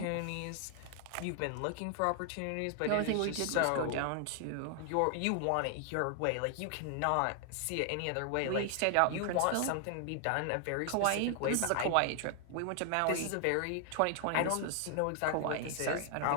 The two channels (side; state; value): both; different; correlation 0.00